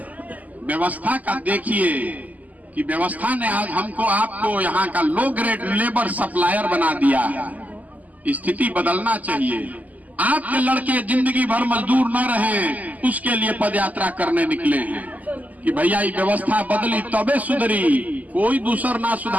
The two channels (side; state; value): left; late; 0.078 ms